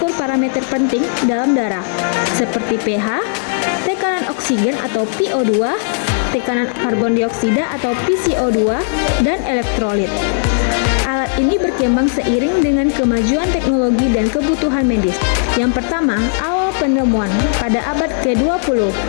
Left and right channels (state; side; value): silent; right; 62 dB below the other